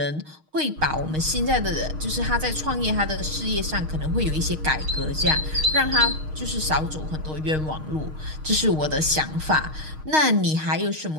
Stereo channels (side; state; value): left; late; 6.5 ms